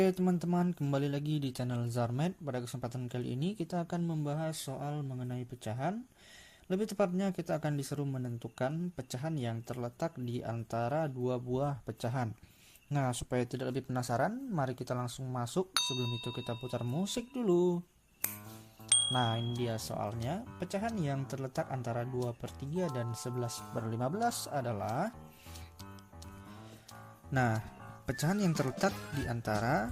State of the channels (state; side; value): identical; both; correlation 1.00